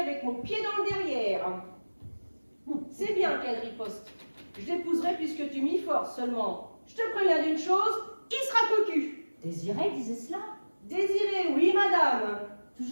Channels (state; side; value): inverted; both; correlation -1.00